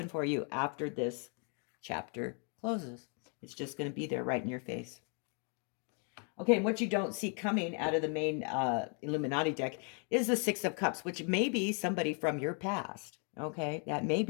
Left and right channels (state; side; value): quieter; right; 39.1 dB